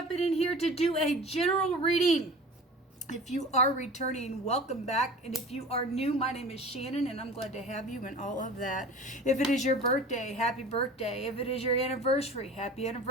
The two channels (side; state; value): both; normal; correlation 0.39